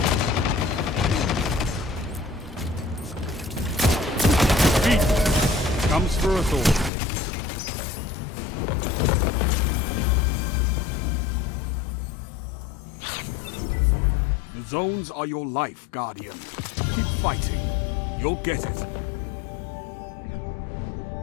Beat comes for us all. The zones are your life, Guardian. Keep fighting. You'll get it.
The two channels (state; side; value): drops out; right; at 6.9 s